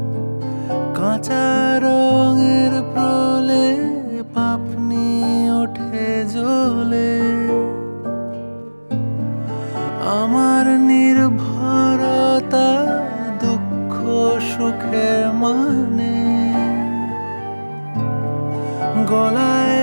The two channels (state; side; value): inverted; both; correlation -1.00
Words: কাঁচা রঙের প্রলে পাপনি ওঠে জ্বলে। আমার নির্ভরতা দুঃখ সুখের মানে,